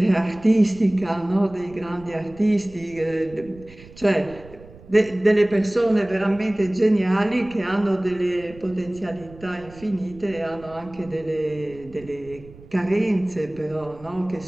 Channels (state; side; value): noise; right; rumble, 20 dB below the sound